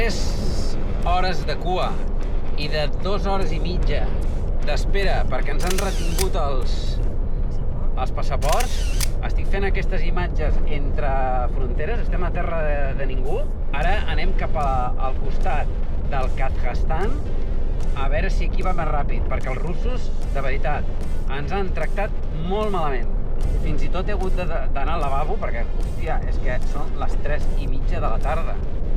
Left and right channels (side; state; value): both; identical; correlation 1.00